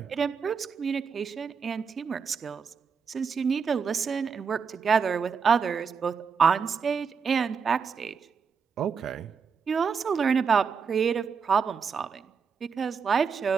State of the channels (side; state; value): left; quieter; 6.0 dB